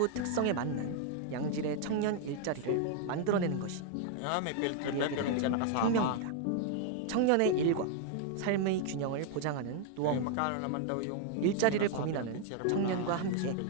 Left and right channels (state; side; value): different; both; correlation 0.00